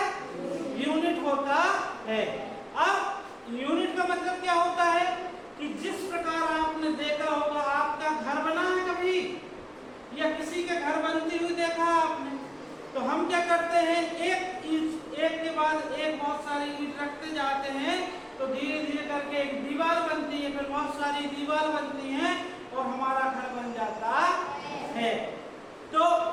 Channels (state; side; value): identical; both; correlation 1.00